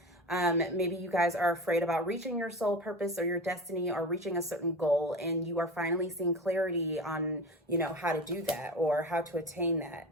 Maybe you guys are afraid about reaching your soul purpose or your destiny, or reaching a certain goal, and you are finally seeing clarity on, you know, how to do that or how to attain that.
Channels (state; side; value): normal; both; correlation 0.29